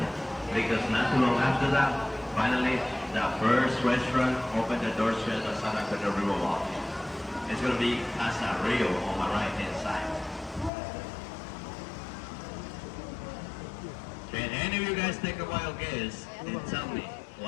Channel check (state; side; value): drops out; right; at 10.7 s